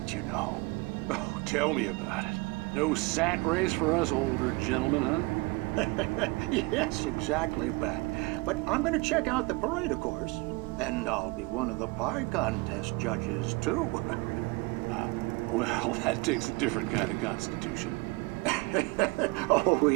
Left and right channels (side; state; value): left; quieter; 25.5 dB